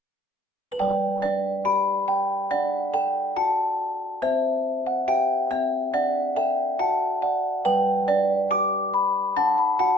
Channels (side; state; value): both; normal; correlation 0.62